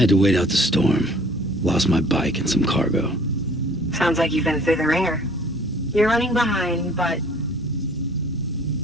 to wait out the storm. Lost my bike and some cargo. Sounds like you've been through the ringer. You're running behind, but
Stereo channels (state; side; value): normal; both; correlation 0.53